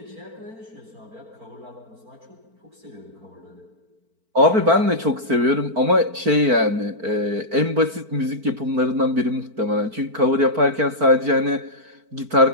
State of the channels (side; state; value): left; late; 4.5 ms